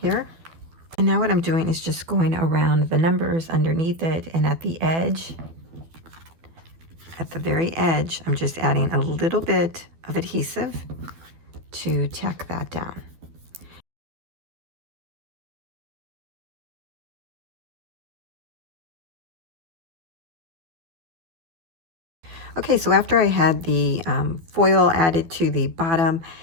And now what I'm doing is just going around the numbers underneath it, and at the edge, at the very edge, I'm just adding a little bit of adhesive to tack that down. Okay, so after I had the foil added to the bottom,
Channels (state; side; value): late; left; 12 ms